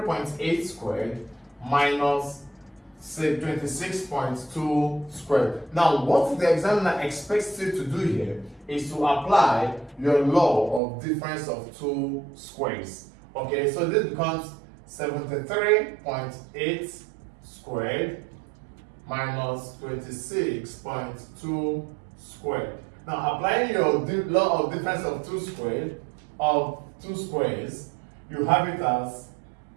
squared minus 26.2 squared. Now, what the examiner expects you to do here is to apply your law of difference of two squares. Okay, so this becomes 73.8 squared minus 26.2 squared. Now, applying your law of difference of two squares, you have it as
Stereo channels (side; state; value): left; drops out; at 10.8 s